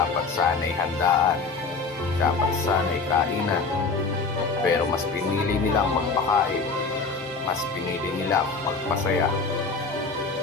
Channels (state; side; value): quieter; right; 4.3 dB